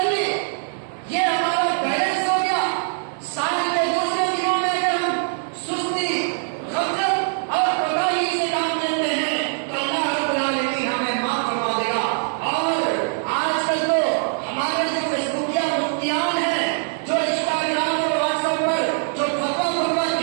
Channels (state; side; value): silent; left; digital silence